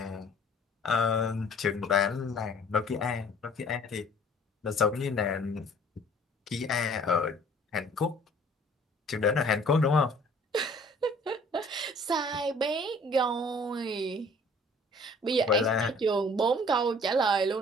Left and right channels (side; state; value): both; normal; correlation 0.53